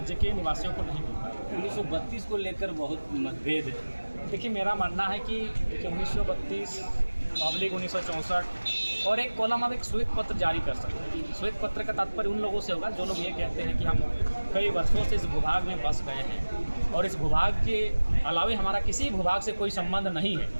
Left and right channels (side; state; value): both; inverted; correlation -1.00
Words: के निवासियों को नहीं मिल पाएगा। 1932 को लेकर बहुत मतभेद है। देखिए, मेरा मानना है कि 1932/1964 और एक कॉलम आप एक श्वेत पत्र जारी कर सकते हैं। श्वेत पत्र का तात्पर्य उन लोगों से होगा जो लोग ये कहते हैं कि हम कई वर्षों से इस भूभाग में बस गए हैं और इस भूभाग के अलावे हमारा किसी भूभाग से कोई संबंध नहीं है,